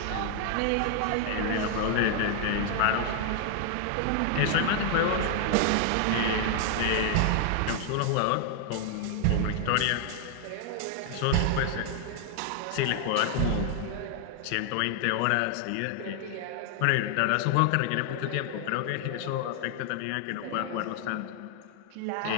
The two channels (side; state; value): both; different; correlation 0.00